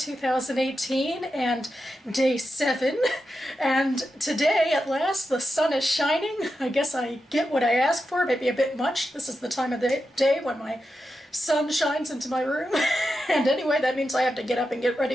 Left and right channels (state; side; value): normal; both; correlation 0.89